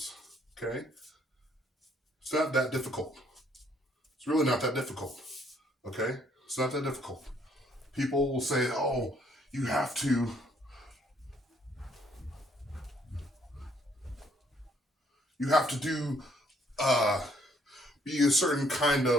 Okay. It's not that difficult. It's really not that difficult. Okay. It's not that difficult. People will say, oh, you have to do be a certain kind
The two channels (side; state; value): both; normal; correlation 0.66